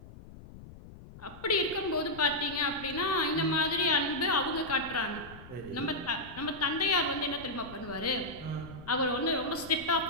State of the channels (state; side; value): noise; left; rumble, 17 dB below the sound